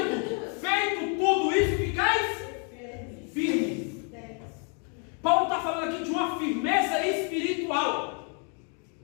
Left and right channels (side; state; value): right; quieter; 39.8 dB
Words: feito tudo isso, ficais firmes. Paulo está falando aqui de uma firmeza espiritual.